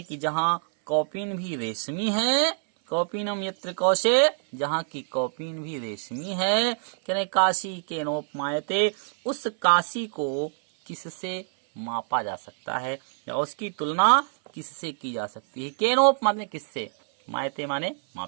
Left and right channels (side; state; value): left; silent; 59 dB below the other